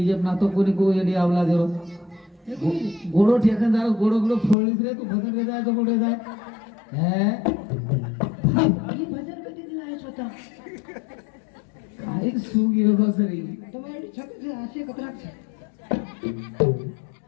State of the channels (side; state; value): right; drops out; at 4.5 s